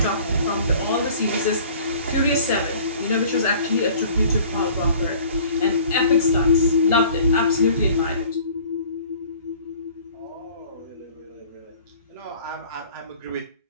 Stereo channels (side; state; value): both; inverted; correlation -0.49